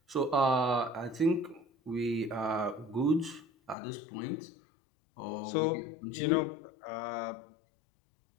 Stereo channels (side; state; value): right; drops out; at 3.8 s